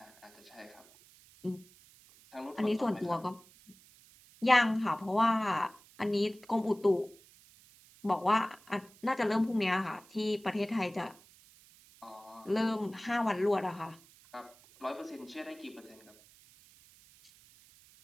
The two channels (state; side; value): noise; right; hiss, 25 dB below the sound